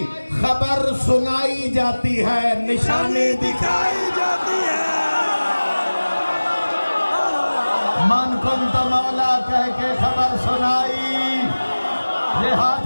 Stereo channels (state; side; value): inverted; both; correlation -1.00